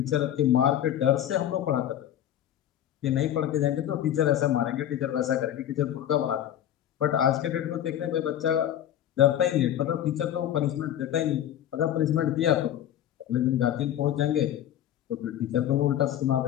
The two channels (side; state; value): right; quieter; 11.2 dB